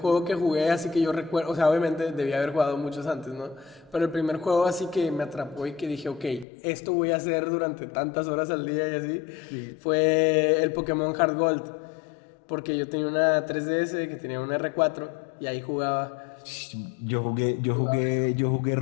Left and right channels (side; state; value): right; drops out; at 6.5 s